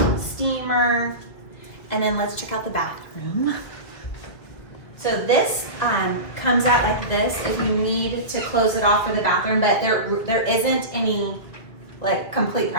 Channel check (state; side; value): late; right; 2.2 ms